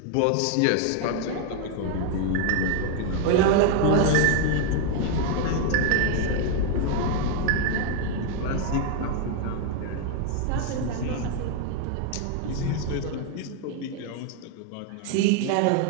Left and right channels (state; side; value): different; both; correlation 0.01